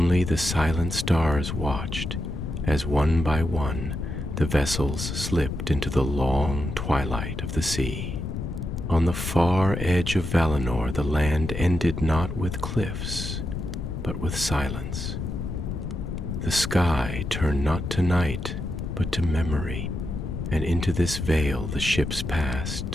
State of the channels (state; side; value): noise; left; rumble, 5 dB below the sound